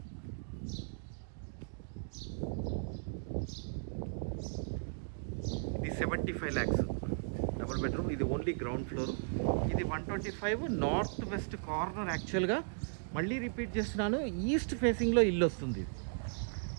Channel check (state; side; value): silent; left; digital silence